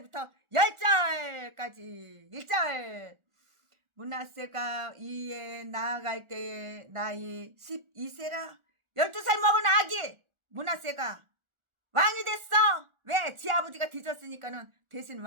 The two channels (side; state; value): left; late; 1.4 ms